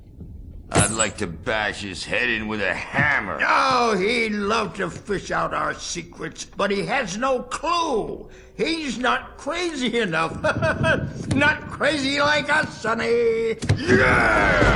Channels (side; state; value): both; identical; correlation 1.00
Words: I'd like to bash his head in with a hammer. Oh, he'd love to fish out our secrets, but he has no clue. He's not crazy enough. Not crazy like us, Sonny.